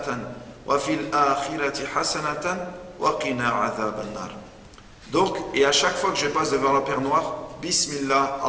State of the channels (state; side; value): identical; both; correlation 1.00